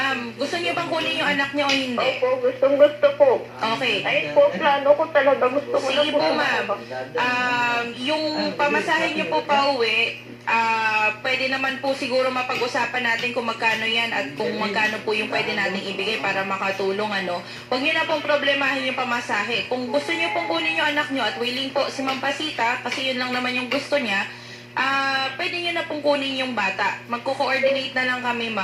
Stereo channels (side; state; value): both; identical; correlation 1.00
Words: gusto niyo bang kunin yung anak niyo o hindi? Opo, gusto po. Okay. Ayun po, plano ko talaga. Gusto ko na Sige po. po, ma'am. Yung pamasahe niyo po pa uwi, pwede naman po siguro mapag-usapan natin kung magkano yan at kung magkano po yung pwede natin ibigay para makatulong, ano. Huwag niyo na pong problemahin yung pamasahe. Kung gusto niyo pong kunin yung anak niyo at willing po si Ma'am Pasita, kasi yun lang naman yung gusto niya, pwede nyo na pong kunin yung bata. Magko-coordinate na lang kami,